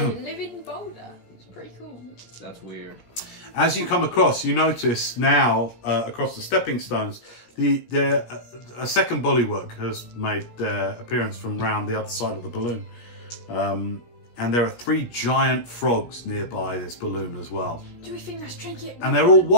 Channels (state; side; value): late; right; 17 ms